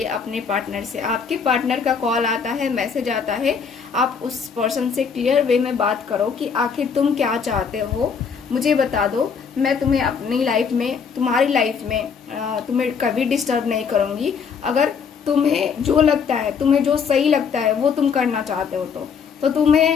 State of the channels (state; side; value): quieter; right; 6.2 dB